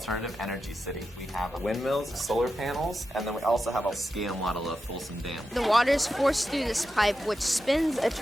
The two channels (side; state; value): both; normal; correlation 0.89